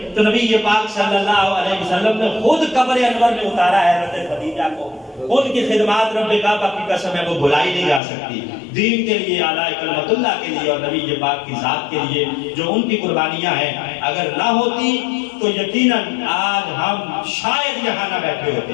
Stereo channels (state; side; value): drops out; right; at 8.0 s